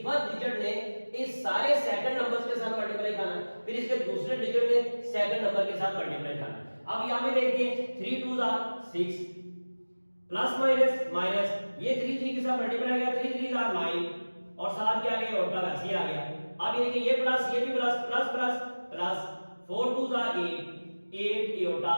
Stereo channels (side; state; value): both; inverted; correlation -1.00